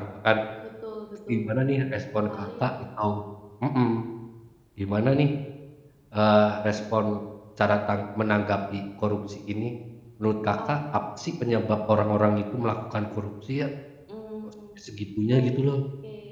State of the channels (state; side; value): identical; both; correlation 1.00